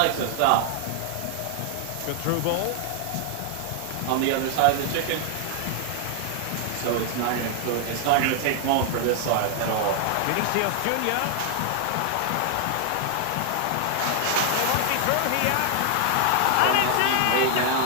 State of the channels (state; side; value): different; both; correlation 0.00